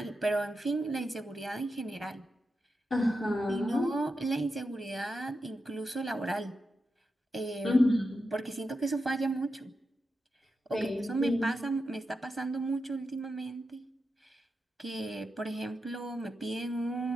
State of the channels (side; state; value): both; normal; correlation 0.88